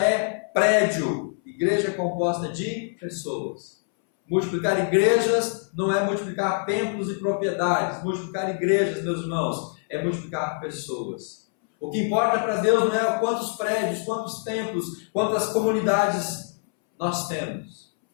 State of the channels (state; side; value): silent; right; 62 dB below the other